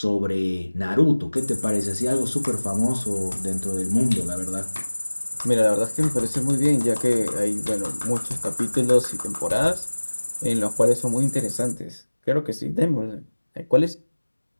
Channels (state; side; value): inverted; both; correlation -1.00